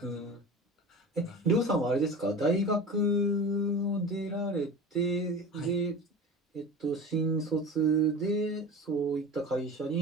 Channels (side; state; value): both; normal; correlation 0.33